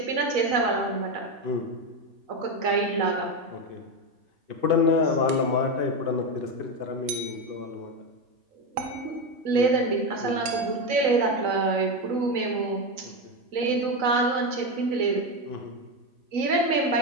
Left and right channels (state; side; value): late; left; 3.9 ms